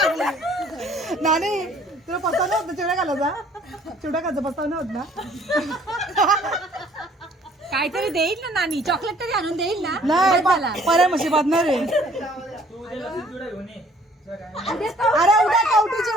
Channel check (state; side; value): normal; both; correlation 0.58